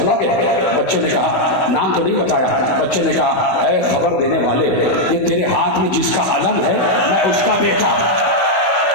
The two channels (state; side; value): late; right; 16 ms